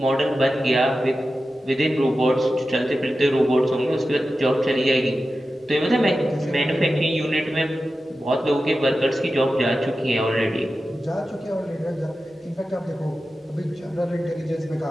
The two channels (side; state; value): both; normal; correlation 0.93